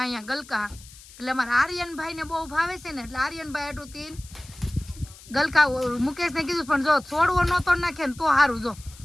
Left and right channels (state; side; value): noise; left; hiss, 20 dB below the sound